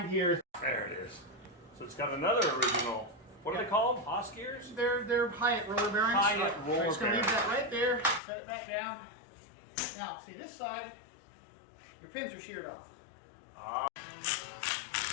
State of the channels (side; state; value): right; drops out; at 8.2 s